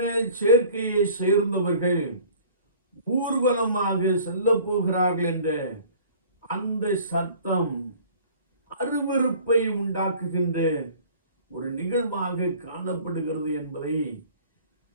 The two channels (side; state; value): both; inverted; correlation -0.49